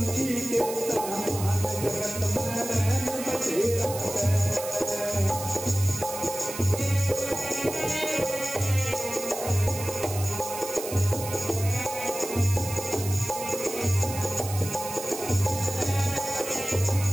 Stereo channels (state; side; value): noise; right; hiss, 9 dB below the sound